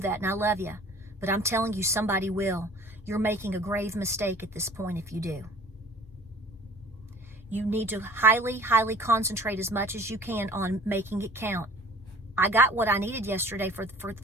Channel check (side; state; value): both; normal; correlation 0.48